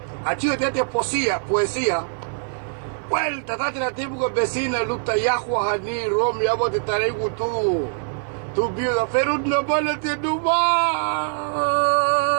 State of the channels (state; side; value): silent; left; 55 dB below the other